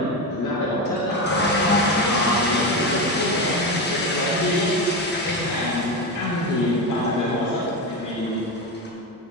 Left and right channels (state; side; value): normal; both; correlation 0.17